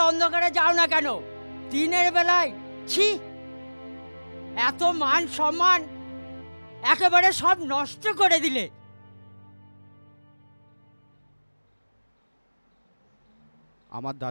অন্ধকারে যাও না কেন? দিনের বেলায় ছি, এত মান সম্মান একেবারে সব নষ্ট করে দিলে। আমার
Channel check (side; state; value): both; inverted; correlation -1.00